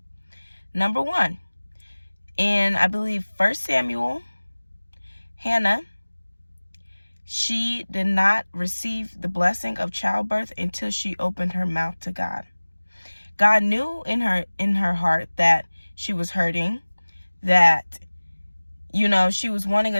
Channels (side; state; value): both; inverted; correlation -1.00